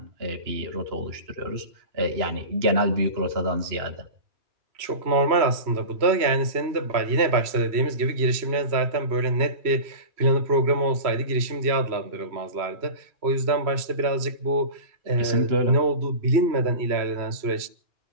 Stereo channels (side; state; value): left; late; 3.0 ms